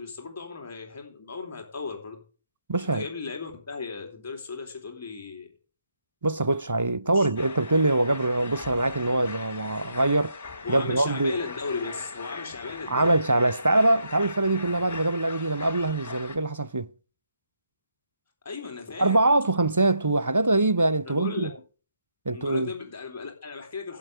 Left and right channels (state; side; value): inverted; both; correlation -0.77